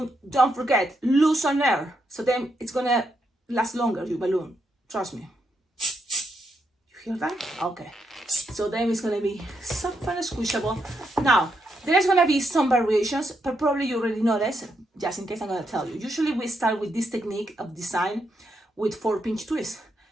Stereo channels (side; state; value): both; normal; correlation 0.80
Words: don't forget, loosen air, so then it's gonna last longer, your balloon, trust me. You hear that? Okay, so then it's gonna be soft and squishable. Now, there's gonna be some variations, but probably you already know this, just in case I'm gonna tell you. Usually we start with this technique of design with 4-pinch twist,